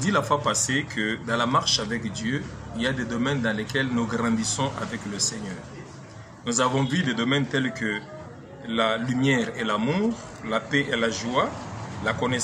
la fois passée que dans la marche avec Dieu, il y a des domaines dans lesquels nous grandissons avec le Seigneur. Nous avons vu des domaines tels que la lumière et l'amour, la paix et la joie, la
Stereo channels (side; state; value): both; identical; correlation 1.00